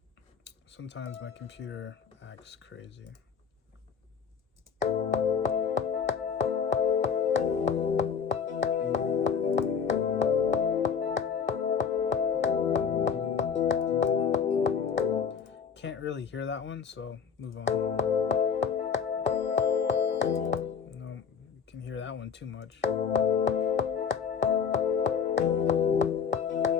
Sometimes my computer acts crazy. Can't really hear that one, so move on. No, you can hear that one too much.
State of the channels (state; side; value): quieter; right; 6.6 dB